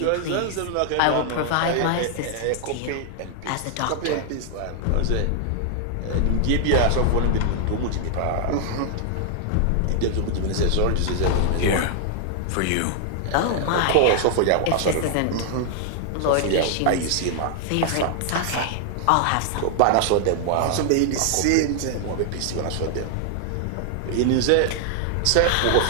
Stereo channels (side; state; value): both; different; correlation 0.00